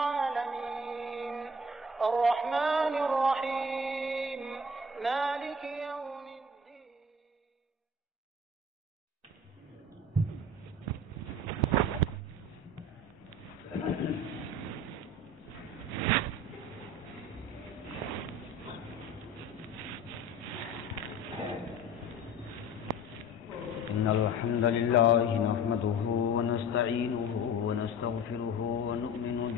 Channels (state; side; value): normal; both; correlation 0.40